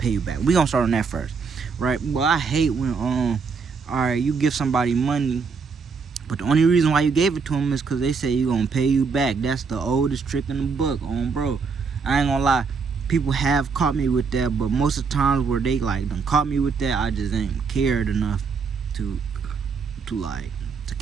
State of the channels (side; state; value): left; quieter; 5.2 dB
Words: you back. We gonna start on that first, right? Well, I hate when all right, you give somebody money, but the only reason why you gave it to them is because they say you gonna pay you back. That's the oldest trick in the book, bro. I ain't gonna lie, people have caught me with that, but most of the times where they like done caught me with that, I just ain't cared enough to